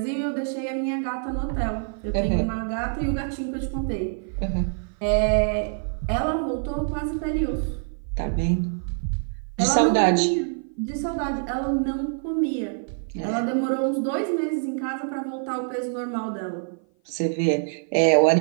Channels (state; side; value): silent; left; 56 dB below the other